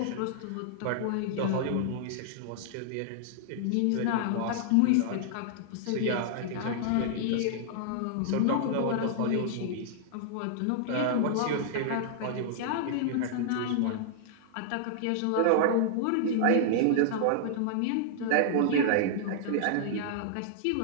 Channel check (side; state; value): both; different; correlation -0.01